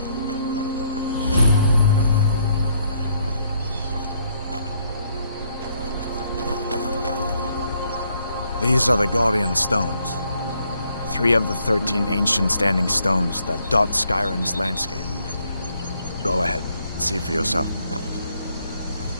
These are the Guardian Stones. 3 of the 13 ancient standing stones that dot Skyrim's landscape. Go ahead, see for yourself.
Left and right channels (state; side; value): inverted; both; correlation -0.71